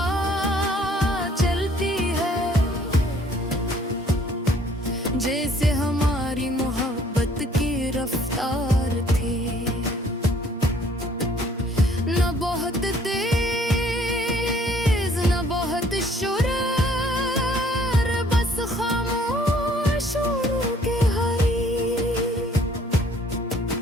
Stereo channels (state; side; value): normal; both; correlation 0.59